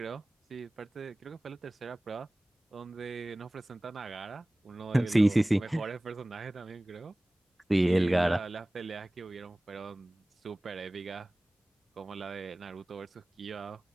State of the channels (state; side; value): normal; both; correlation 0.98